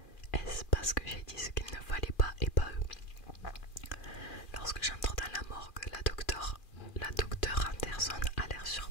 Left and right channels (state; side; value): late; right; 2.4 ms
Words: Est-ce parce que j'ai dit ce qu'il ne fallait pas et